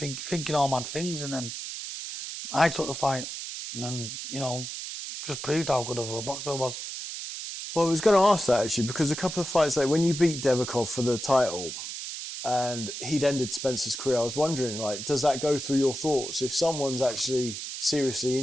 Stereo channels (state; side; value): noise; right; hiss, 7 dB below the sound